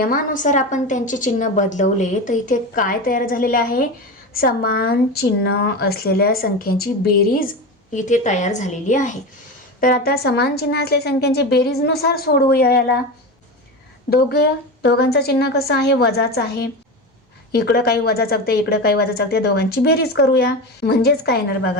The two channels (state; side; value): normal; both; correlation 0.23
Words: आपण त्यांचे चिन्ह बदलवले तर इथे काय तयार झालेले आहे, समान चिन्ह असलेल्या संख्यांची बेरीज इथे तयार झालेली आहे. तर आता समान चिन्ह असलेल्या संख्यांची बेरीजनुसार सोडवूया याला. दोघांचं चिन्ह कसं आहे, वजाचं आहे. इकडं काही वजा चकते, इकडं काही वजा चकते, दोघांची बेरीज करूया. म्हणजेच काय येणार